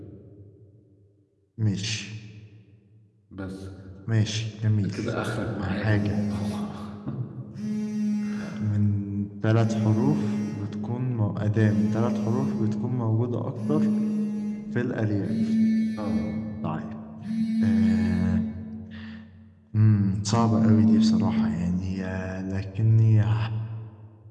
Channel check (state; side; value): identical; both; correlation 1.00